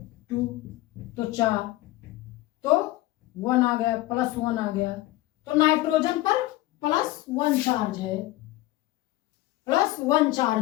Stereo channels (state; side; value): quieter; right; 17.3 dB